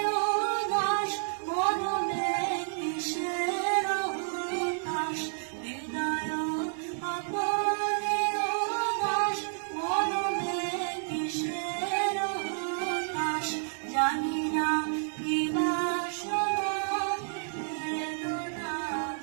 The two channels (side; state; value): left; silent; digital silence